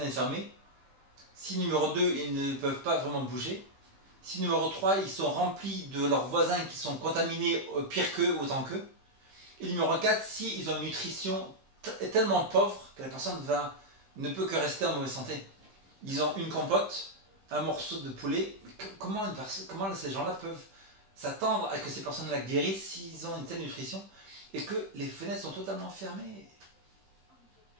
fermées, si numéro 2, ils ne peuvent pas vraiment bouger, si numéro 3, ils sont remplis de leurs voisins qui sont contaminés pire qu'eux, autant qu'eux, et numéro 4, si ils ont une nutrition tellement pauvre que la personne ne peut que rester en mauvaise santé. Ils ont une compote, un morceau de poulet. Comment ces gens-là peuvent s'attendre à que ces personnes-là guérissent s'ils ont une telle nutrition et que les fenêtres sont totalement fermées?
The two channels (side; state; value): left; late; 15 ms